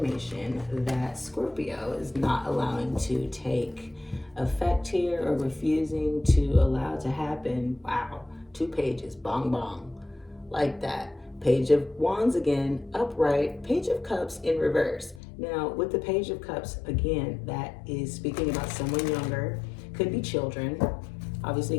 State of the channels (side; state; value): right; drops out; at 15.2 s